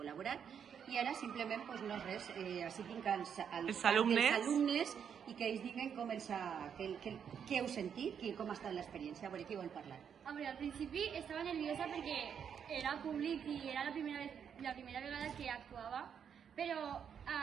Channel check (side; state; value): left; quieter; 7.8 dB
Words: i ara simplement, no res, així tinc els alumnes i que ells diguen què heu sentit, com ha estat l'experiència. A veure, qui vol parlar? Al principi estava nerviosa perquè era públic i era la primera vegada que actuava, però